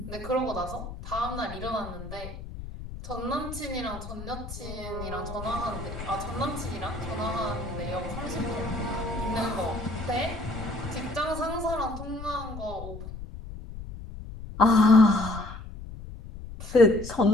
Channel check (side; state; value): left; noise; rumble, 10 dB below the sound